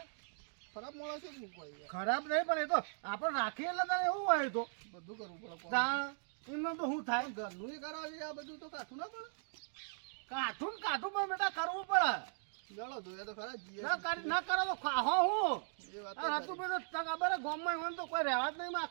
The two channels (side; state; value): left; silent; digital silence